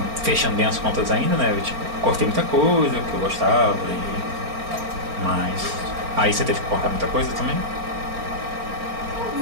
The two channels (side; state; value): left; late; 4.4 ms